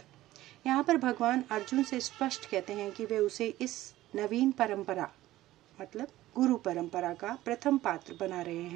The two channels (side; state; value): left; quieter; 15.7 dB